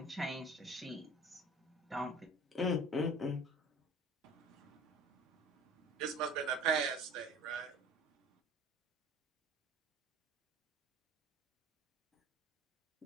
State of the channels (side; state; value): both; normal; correlation 0.44